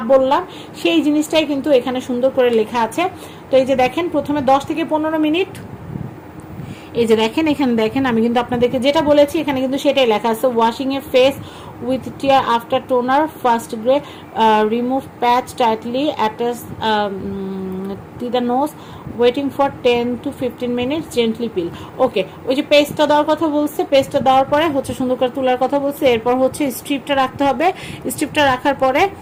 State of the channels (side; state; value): both; identical; correlation 1.00